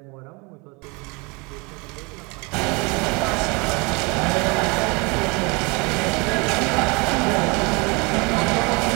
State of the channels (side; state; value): left; quieter; 28.2 dB